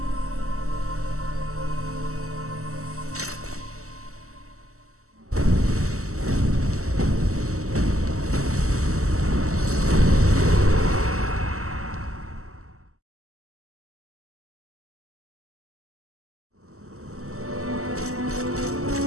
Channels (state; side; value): late; left; 0.64 ms